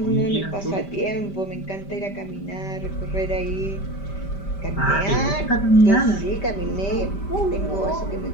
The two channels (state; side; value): late; right; 5.1 ms